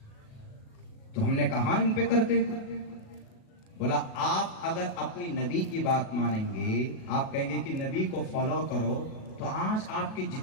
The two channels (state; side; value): late; right; 37 ms